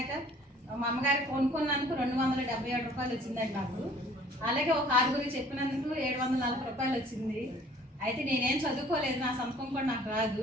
మా అమ్మగారికి కొనుక్కున్నందుకు 277 రూపాయలు వచ్చిందండి నాకు. అలాగే ఒక 6 చెప్పినందుకు 740 రూపాయలు వచ్చింది. అయితే నేనేం చదువుకోలేదు, నా సంతకం కూడా నాకు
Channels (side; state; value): both; normal; correlation 0.53